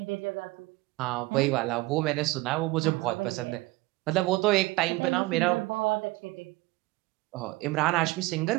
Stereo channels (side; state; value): left; quieter; 20.9 dB